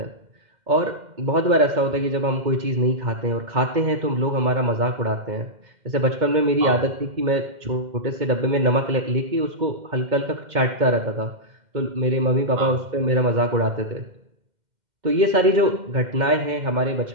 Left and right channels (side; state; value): left; late; 2.1 ms